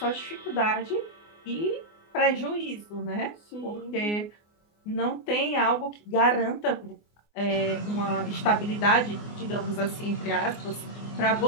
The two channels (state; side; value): late; right; 24 ms